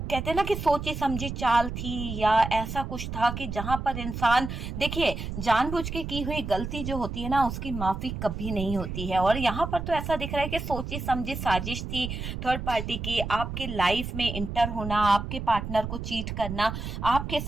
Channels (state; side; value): noise; right; rumble, 6 dB below the sound